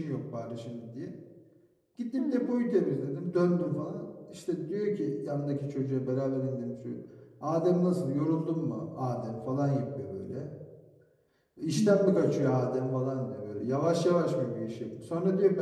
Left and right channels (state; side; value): identical; both; correlation 1.00